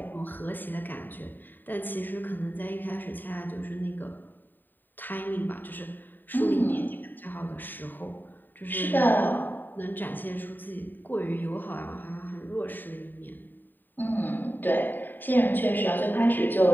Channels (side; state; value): right; late; 0.091 ms